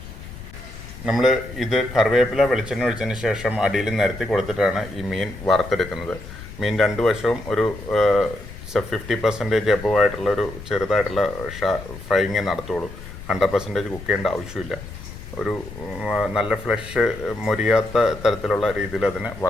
നമ്മൾ ഇത് കറിവേപ്പില വെളിച്ചെണ്ണ ഒഴിച്ചതിന് ശേഷം അടിയിൽ നിരത്തി കൊടുത്തിട്ടാണ് ഈ മീൻ വറുത്തെടുക്കുന്നത്. മീൻ രണ്ട് വശവും ഒരു 50% എബവ് ആയിട്ടുള്ള ഒരു ചെറുതായിട്ടുള്ള ഫ്രൈയിങ് നടത്തുള്ളൂ. 100% കുക്ക് ചെയ്യേണ്ട ആവശ്യമില്ല. ഒരു നല്ല ഫ്ലഷ് മൊരിയാത്ത തരത്തിലുള്ള രീതിയിൽ അതിനെ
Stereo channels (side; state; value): left; noise; rumble, 14 dB below the sound